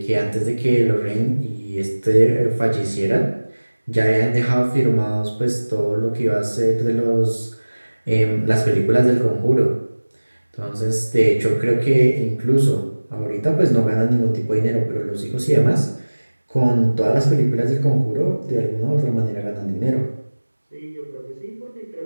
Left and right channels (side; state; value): both; inverted; correlation -1.00